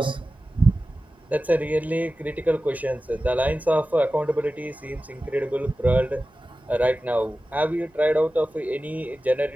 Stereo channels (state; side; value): normal; both; correlation 0.95